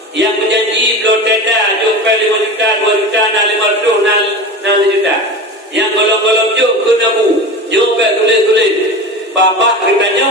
yang berjanji belum tenda jumpa 5 juta, 2 juta, 500, 6 juta. Yang golong-golong juk kena bu. Jumpa tulis. babah kitanya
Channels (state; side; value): normal; both; correlation 0.29